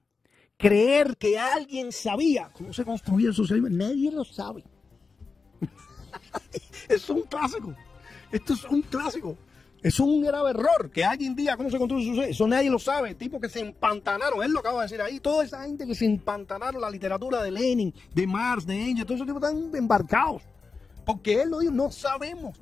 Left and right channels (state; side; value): quieter; right; 4.6 dB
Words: Creer que alguien sabía cómo se construía el socialismo. Nadie lo sabe. Es un clásico. Esto es un clásico. Es un grave error que alguien diga cómo se construye el socialismo. Eso nadie lo sabe. Tipos que se empantanaron. Él lo acaba de decir ahí. Toda esa gente que se empantanaron la literatura de Lenin, de Marx, de Engels. Todos esos tipos están embarcados. Porque él lo dijo. No sabemos.